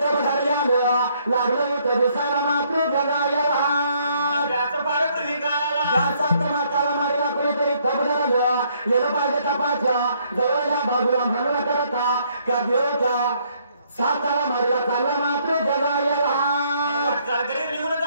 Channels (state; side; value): inverted; both; correlation -0.68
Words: धरल्यानं लागलं होतं दिसायला मात्र जगायला त्याचं फार पूर्वी काळाला ज्याचा माताला मारला कुणीतरी तब धरलं येणं पाहिजे तपाच्या जवळल्या बाजूला म्हणून करता त्या देवच्या साताला मारला चालला मात्र जगायला घरी निघून